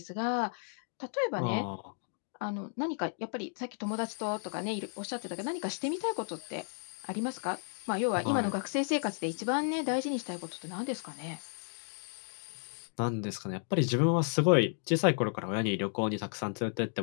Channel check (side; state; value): right; silent; 56 dB below the other